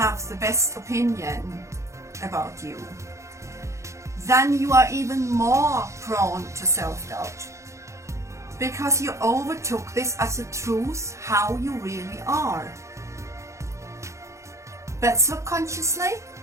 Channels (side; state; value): left; late; 0.14 ms